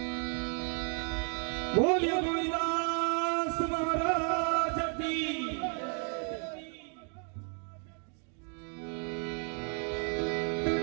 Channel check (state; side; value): quieter; left; 39.8 dB